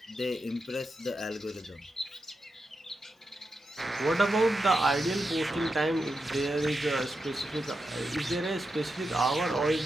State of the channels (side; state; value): both; normal; correlation 0.87